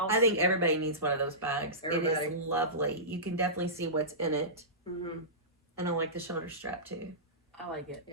I think everybody needs one of those bags. It Everybody. is lovely. You can definitely see what's in it. Mm-hmm. And I like the shoulder strap too. I like it.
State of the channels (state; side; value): normal; both; correlation -0.20